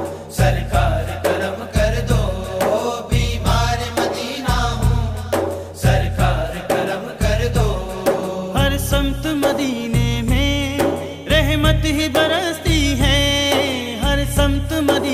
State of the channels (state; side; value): identical; both; correlation 1.00